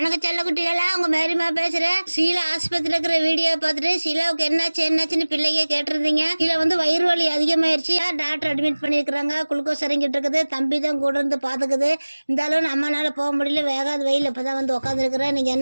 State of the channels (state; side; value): inverted; both; correlation -1.00